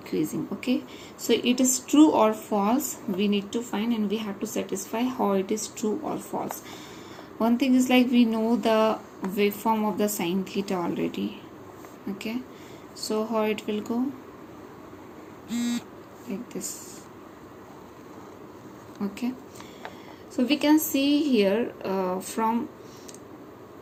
okay. So it is true or false we need to find, and we have to satisfy how it is true or false. One thing is like we know the waveform of the sin theta already, okay. So how it will go? Like this, okay. So we can see here from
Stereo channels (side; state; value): both; identical; correlation 1.00